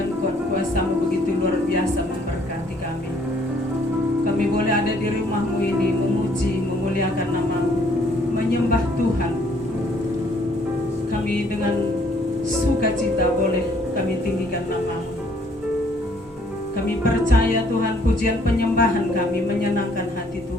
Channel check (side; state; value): both; normal; correlation 0.63